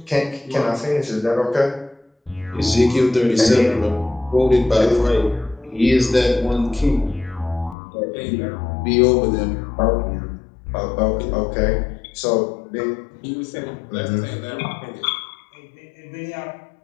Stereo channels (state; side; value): drops out; right; at 7.8 s